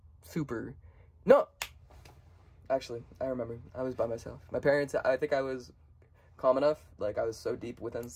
super. No! Actually, I remember. I was by myself. My parents, I think I was calm enough. Like, I was so deep within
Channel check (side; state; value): both; identical; correlation 1.00